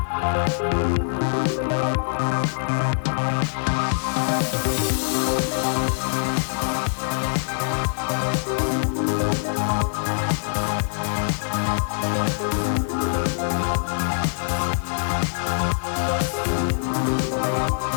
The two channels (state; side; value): silent; right; 62 dB below the other